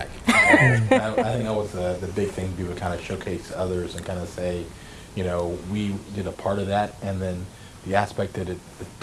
I think that was the big thing to do, to kind of showcase others and kind of say, we did a part of that, and then the aspect that it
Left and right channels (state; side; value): identical; both; correlation 1.00